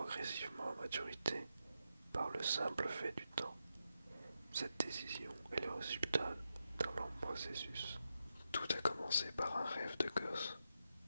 à maturité par le simple fait du temps. Cette décision est le résultat d'un long processus. Tout a commencé par un rêve de gosse,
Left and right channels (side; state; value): both; inverted; correlation -0.87